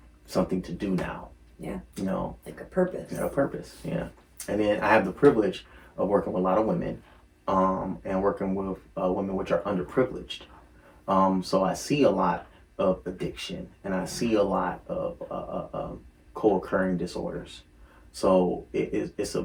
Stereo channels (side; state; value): both; identical; correlation 1.00